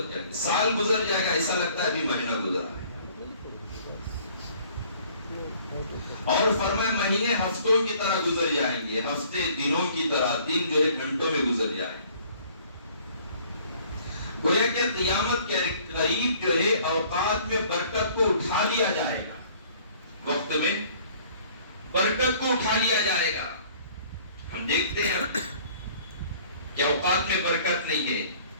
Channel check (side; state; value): both; inverted; correlation -0.55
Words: جائیں گے۔ سال گزر جائے گا، ایسا لگتا ہے ابھی مہینہ گزرا ہے۔ اور فرمائے مہینے ہفتوں کی طرح گزر جائیں گے، ہفتے دنوں کی طرح، دن جو ہے گھنٹوں میں گزر جائیں گے۔ گویا کہ قیامت کے قریب جو ہے اوقات میں برکت کو اٹھا لیا جائے گا، وقت میں برکت کو اٹھا لیا جائے گا۔ ہم دیکھتے ہیں کہ اوقات میں برکت نہیں ہے،